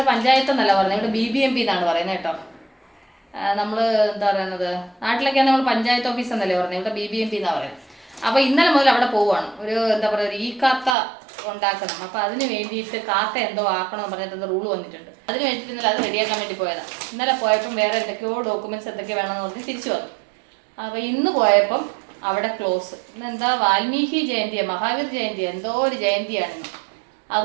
പഞ്ചായത്ത് എന്നല്ല പറയുന്നത്, ഇവിടെ BBMP എന്നാണ് പറയുന്നത് കേട്ടോ. നമ്മൾ എന്താ പറയുന്നത്, നാട്ടിലൊക്കെയാണ് നമ്മൾ പഞ്ചായത്ത് ഓഫീസ് എന്നല്ലേ പറയുന്നത്, ഇവിടെ BBMP എന്നാണ് പറയുന്നത്. അപ്പോൾ ഇന്നലെ മുതൽ അവിടെ പോവുകയാണ്. എന്താ പറയുക, ഒരു കാത്ത ഉണ്ടാക്കണം. അപ്പോൾ അതിന് വേണ്ടിയിട്ട് കാക്ക എന്തോ ആക്കണമെന്ന് പറഞ്ഞിട്ട് റൂൾ വന്നിട്ടുണ്ട്. അതിന് വേണ്ടിയിട്ട് ഇന്നലെ അത് റെഡിയാക്കാൻ വേണ്ടി പോയതാണ്. ഇന്നലെ പോയപ്പം വേറെ എന്തൊക്കെയോ ഡോക്യുമെന്റ്സ് എന്തൊക്കെ വേണമെന്ന് പറഞ്ഞ് തിരിച്ചു വന്നു. അപ്പോൾ ഇന്ന് പോയപ്പം അവിടെ ക്ലോസ്. ഇന്നെന്താ വാൽമീകി ജയന്തിയാണ്, മഹാവീർ ജയന്തി, എന്തോ ഒരു ജയന്തിയാണിന്ന്.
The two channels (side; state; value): left; drops out; at 11.0 s